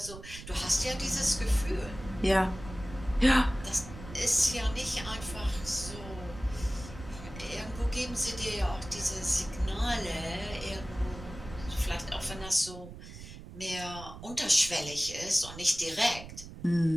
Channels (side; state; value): right; noise; rumble, 13 dB below the sound